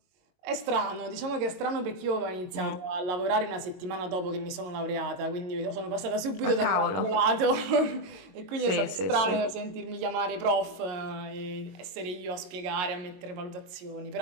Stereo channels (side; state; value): left; late; 22 ms